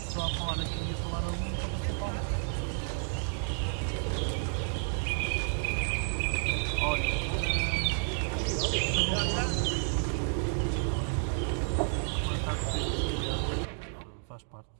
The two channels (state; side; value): silent; left; 57 dB below the other